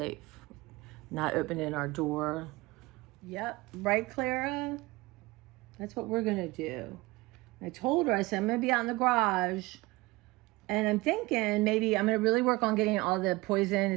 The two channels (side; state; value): left; quieter; 21.8 dB